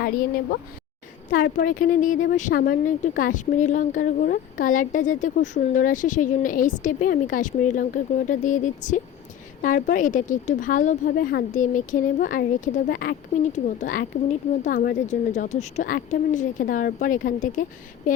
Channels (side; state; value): right; quieter; 10.2 dB